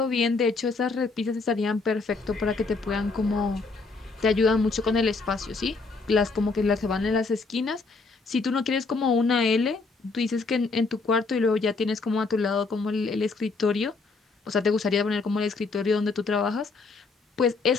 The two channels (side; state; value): right; quieter; 4.0 dB